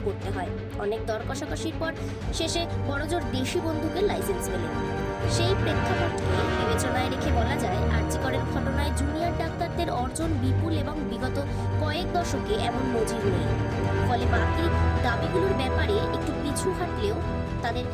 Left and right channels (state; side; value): identical; both; correlation 1.00